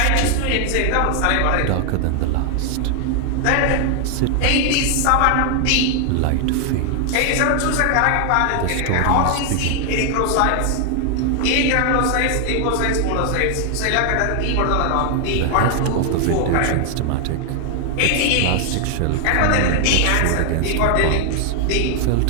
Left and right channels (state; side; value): different; both; correlation 0.00